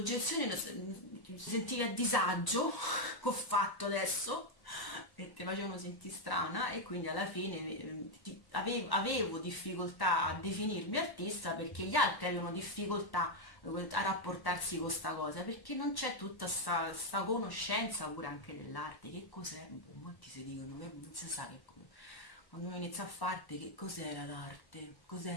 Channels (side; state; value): right; late; 1.1 ms